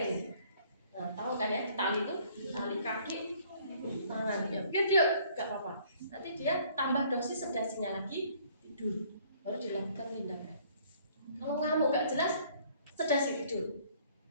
Nah tahu kan ya, ditali itu tali kaki, tangan ya, biar dia nggak apa-apa. Nanti dia tambah dosis sedasinya lagi, tidur, baru dilakukan tindakan. Kalau ngamuk nggak jelas, sedasi tidur.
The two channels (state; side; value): inverted; both; correlation -0.59